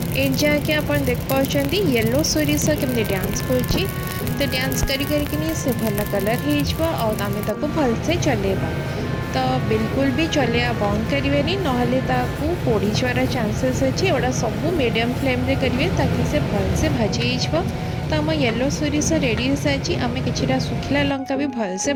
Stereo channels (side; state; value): both; identical; correlation 1.00